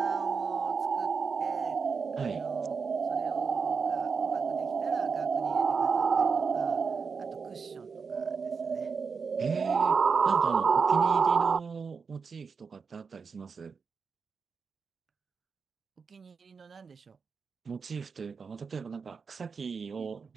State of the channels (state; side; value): quieter; left; 5.4 dB